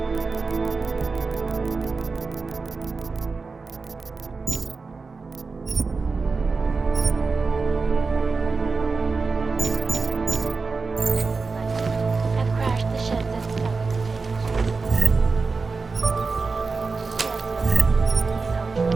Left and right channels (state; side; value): quieter; left; 4.3 dB